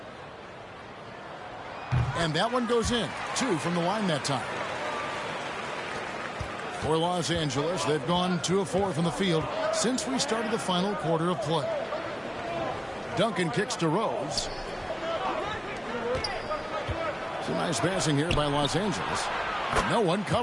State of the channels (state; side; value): identical; both; correlation 1.00